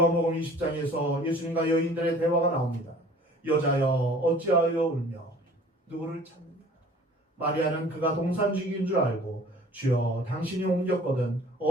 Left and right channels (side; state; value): both; normal; correlation 0.49